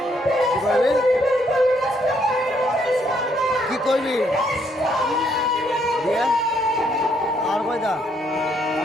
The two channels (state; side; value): normal; both; correlation 0.71